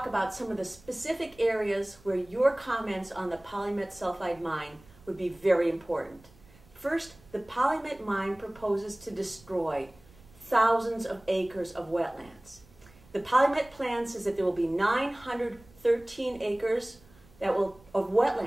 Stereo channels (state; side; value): noise; right; rumble, 26 dB below the sound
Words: about some of the specific areas where your comments on the PolyMet sulfide mine would be very important. First, the PolyMet mine proposes to destroy thousands of acres of wetlands. The PolyMet plan says that there will be 913 acres of